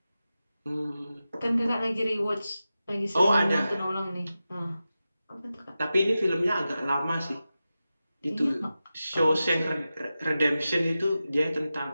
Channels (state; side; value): inverted; both; correlation -0.93